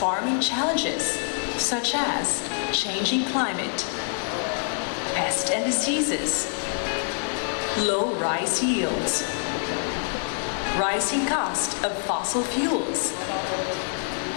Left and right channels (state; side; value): silent; right; 60 dB below the other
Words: challenges such as changing climate, pest and diseases, low rice yields, rising cost of fossil fuels,